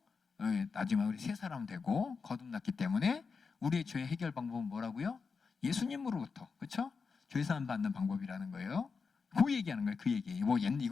나중에 우리 새 사람 되고 거듭났기 때문에 우리의 죄 해결 방법은 뭐라고요? 예수님으로부터, 그렇죠? 죄 사함 받는 방법이라는 거예요. 그 얘기하는 거예요. 그 얘기. 뭐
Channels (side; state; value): right; quieter; 5.1 dB